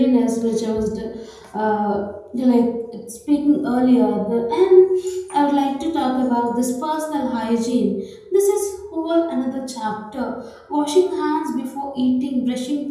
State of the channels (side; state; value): both; identical; correlation 1.00